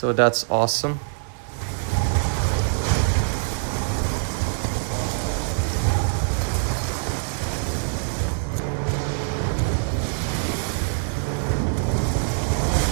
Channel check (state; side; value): silent; left; digital silence